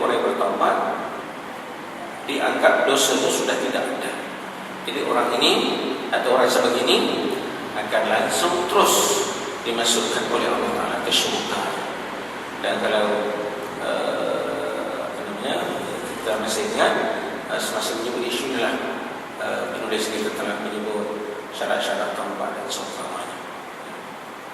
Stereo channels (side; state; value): both; identical; correlation 1.00